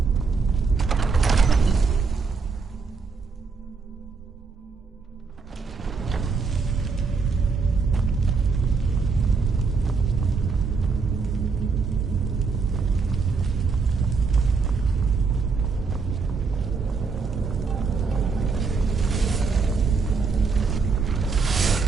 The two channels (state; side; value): quieter; left; 4.8 dB